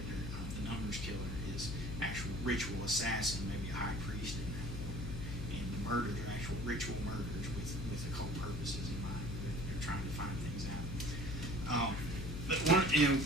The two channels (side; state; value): left; noise; hum, 5 dB below the sound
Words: the Numbers Killer, is actual ritual assassin, maybe a high priest in that order. And the murders are actual ritual murders with occult purposes in mind. They're trying to find things out. But